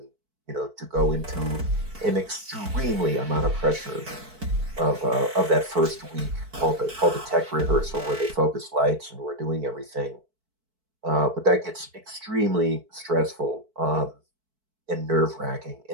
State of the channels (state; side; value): late; left; 4.5 ms